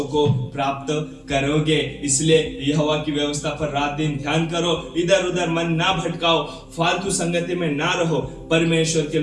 को प्राप्त करोगे। इसलिए यहोवा की व्यवस्था पर रात दिन ध्यान करो, इधर उधर मन ना भटकाओ, फालतू संगति में ना रहो, परमेश्वर के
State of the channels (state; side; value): identical; both; correlation 1.00